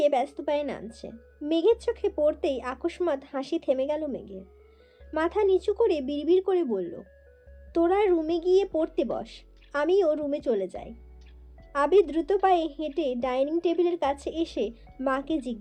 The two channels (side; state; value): both; identical; correlation 1.00